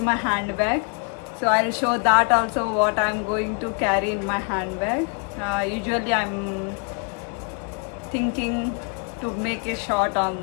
handbag. So I'll show that also what I'm going to carry in my handbag. Usually I'm thinking to make a shot on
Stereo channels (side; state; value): right; quieter; 38.8 dB